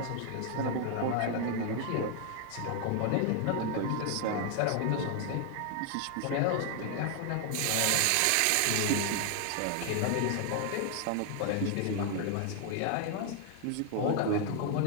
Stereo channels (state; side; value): different; both; correlation 0.00